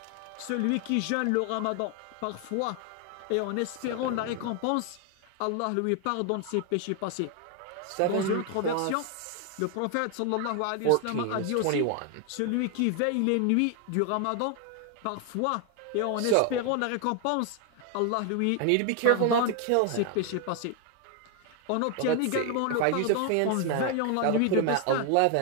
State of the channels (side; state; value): both; different; correlation 0.01